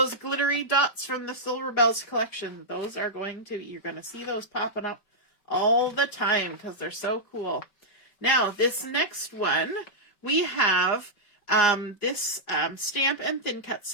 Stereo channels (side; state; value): right; late; 5.2 ms